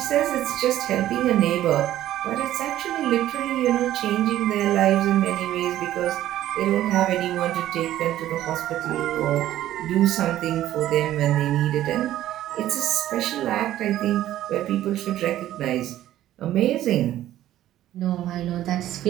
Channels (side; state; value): left; quieter; 13.3 dB